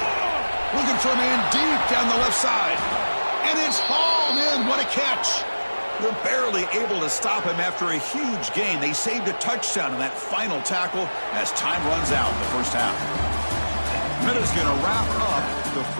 Looking for a man deep down the left side. And it's hauled in. What a catch. They're barely able to stop him after a huge gain. They saved a touchdown in that final tackle as time runs out in the first half. Minutes going to wrap up the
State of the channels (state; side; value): inverted; both; correlation -1.00